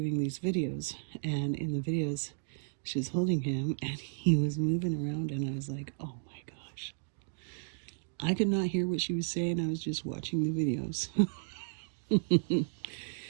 these videos, and in the videos, she's holding him, and he was moving around, and I was like, oh my gosh. I could not hear what she was saying. I was just watching the videos.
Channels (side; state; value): left; silent; digital silence